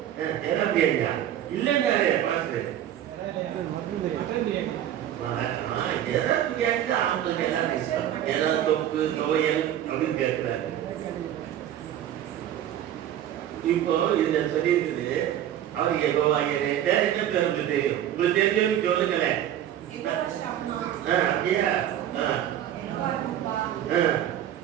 ஏதா பிரியாணியா? இல்லைங்க பார்த்து எதா பிரியாணி தான் அவங்களுக்கு எல்லாரும் இஷ்டம். ஏதாவது தொப்பு துவையல் அப்படின்னு கேட்கிறாரு. இப்போ இதுல சொல்லியிருக்குது அவர் யெகோவாயிரே. என்ன பேர் உங்களுக்கு தெரியும்? உங்களுக்கு தெரிஞ்சவங்க சொல்லுங்களேன். அப்படியா?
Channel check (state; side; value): quieter; left; 11.3 dB